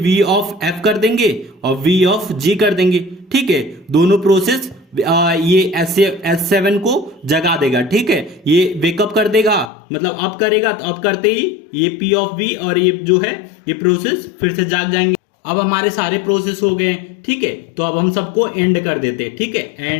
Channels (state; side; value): drops out; right; at 9.7 s